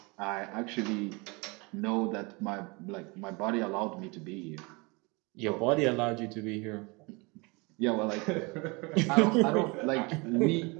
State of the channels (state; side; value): quieter; left; 27.6 dB